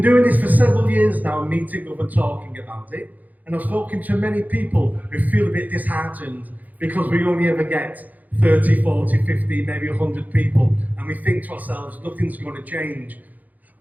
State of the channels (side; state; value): left; late; 0.081 ms